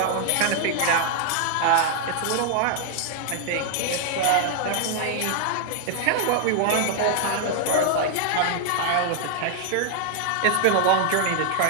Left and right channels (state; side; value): different; both; correlation 0.00